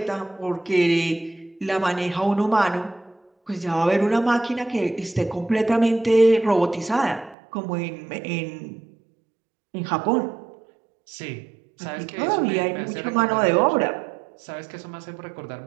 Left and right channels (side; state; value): left; drops out; at 7.4 s